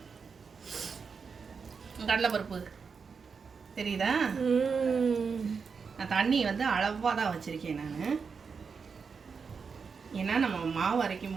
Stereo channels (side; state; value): left; quieter; 5.6 dB